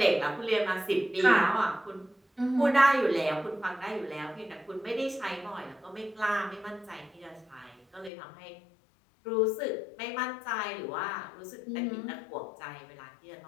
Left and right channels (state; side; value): drops out; right; at 8.1 s